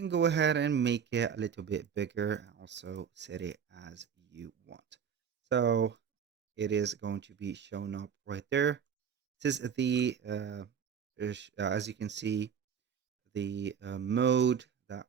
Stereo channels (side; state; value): left; quieter; 7.4 dB